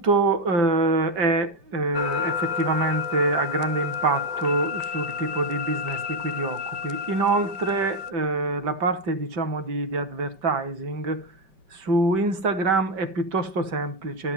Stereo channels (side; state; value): left; late; 5.2 ms